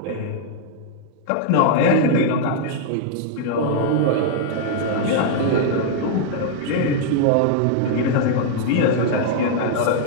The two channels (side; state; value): both; different; correlation -0.01